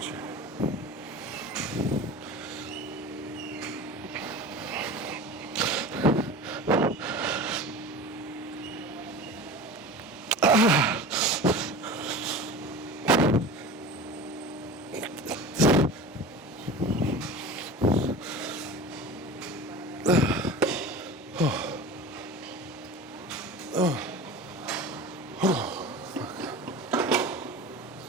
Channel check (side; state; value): both; normal; correlation 0.34